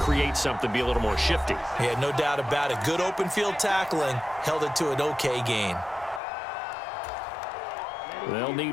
something, be a little more shifty. Yeah, no doubt about it. Good open field tackling held it to an okay gain. They'll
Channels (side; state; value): right; drops out; at 6.2 s